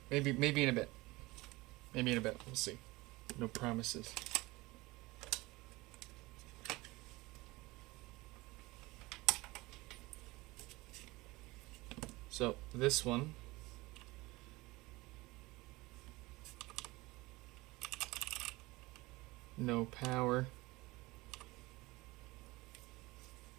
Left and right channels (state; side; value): quieter; left; 21.4 dB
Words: maybe in a bit. Maybe in a bit. We'll see. No promises. So this one no power.